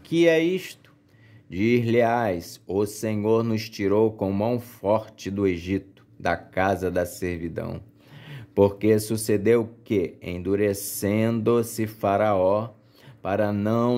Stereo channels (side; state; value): both; identical; correlation 1.00